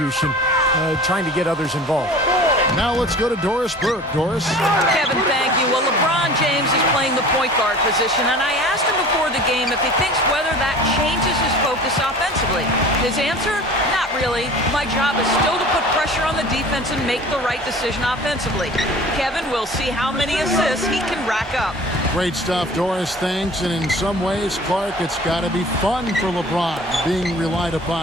trying to get others involved. Now let's go to Doris Burke. Doris? Kevin, thank you. Well, LeBron James is playing the point guard position, and I asked him before the game if he thinks whether that changes his focus offensively. His answer? Not really. My job is still to put pressure on the defense and make the right decision offensively. Kevin, we'll see how many assists he can rack up. Great stuff, Doris. Thanks. And in some ways, Clark, it's got to be fun for LeBron being relied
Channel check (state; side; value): normal; both; correlation 0.42